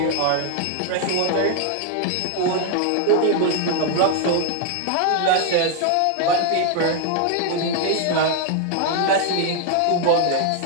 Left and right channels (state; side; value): different; both; correlation 0.00